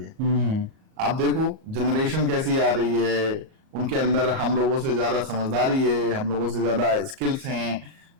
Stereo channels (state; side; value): late; left; 38 ms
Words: आप देखो जनरेशन कैसी आ रही है, उनके अंदर हम लोगों से ज्यादा समझदारी है, हम लोगों से ज्यादा स्किल्स हैं।